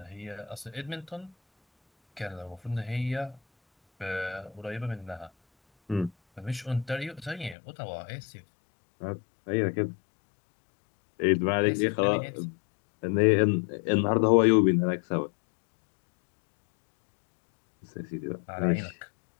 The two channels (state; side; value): drops out; right; at 7.6 s